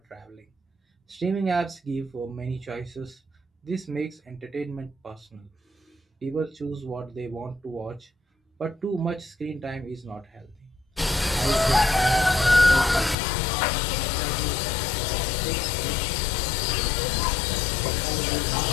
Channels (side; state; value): right; drops out; at 13.2 s